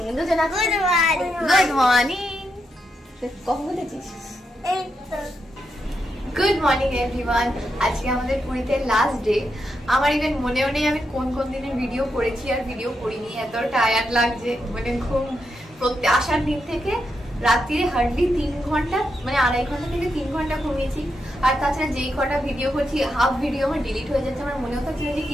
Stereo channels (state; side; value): normal; both; correlation 0.83